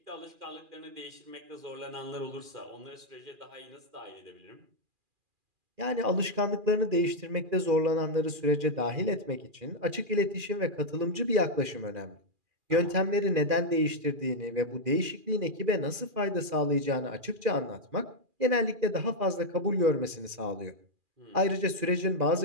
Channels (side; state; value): left; late; 2.4 ms